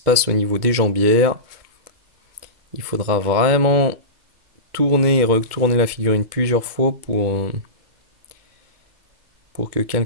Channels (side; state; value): left; late; 2.2 ms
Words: au niveau des jambières, il faudra vraiment tourner et retourner la figurine plusieurs fois pour que